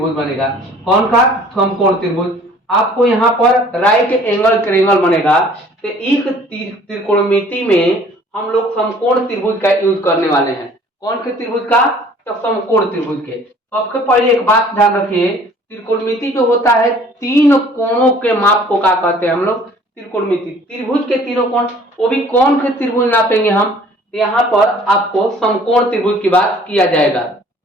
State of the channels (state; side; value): normal; both; correlation 0.53